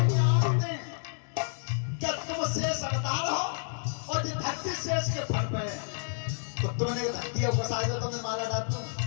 जानते हैं क्या तुम शेष अवतार हो, और जो धरती शेष के फन पे है, तो तुमने धरती को फंसाई तो तुमने मारा डाल दूं।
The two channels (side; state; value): right; silent; digital silence